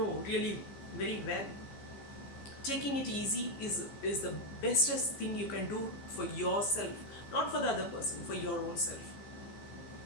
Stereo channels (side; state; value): right; late; 15 ms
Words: really very well, taking it easy is the bestest thing you can do for yourself, not for the other person, for your own self.